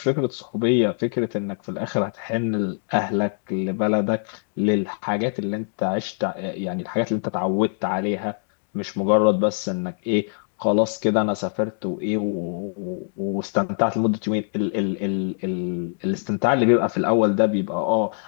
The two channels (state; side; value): silent; right; 63 dB below the other